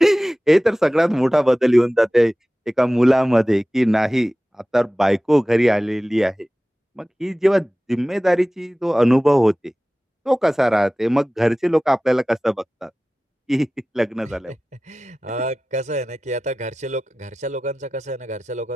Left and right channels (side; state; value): both; normal; correlation 0.97